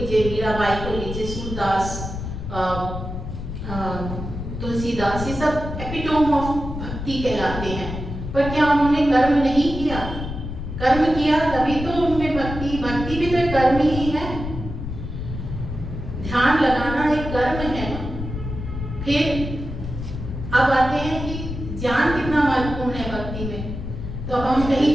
मीराबाई को लीजिए, सूरदास, तुलसीदास, ये सब एपिटोम ऑफ भक्ति कहलाते हैं। पर क्या उन्होंने कर्म नहीं किया? कर्म किया तभी तो उनमें भक्ति भी तो कर्म ही है। ध्यान लगाना एक कर्म है ना। फिर अब आते हैं कि ज्ञान कितना महत्वपूर्ण है भक्ति में। तो अब हम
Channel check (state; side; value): noise; left; rumble, 7 dB below the sound